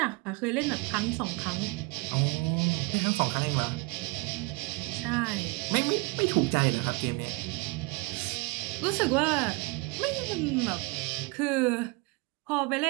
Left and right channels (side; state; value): left; quieter; 25.6 dB